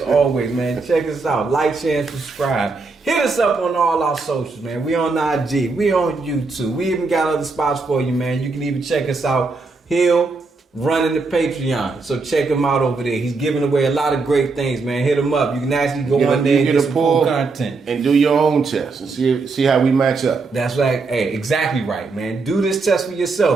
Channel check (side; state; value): left; quieter; 4.0 dB